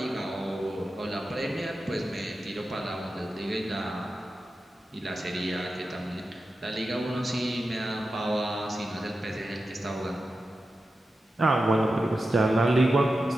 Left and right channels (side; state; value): both; normal; correlation 0.91